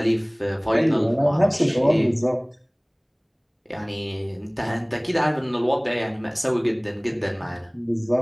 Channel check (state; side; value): identical; both; correlation 1.00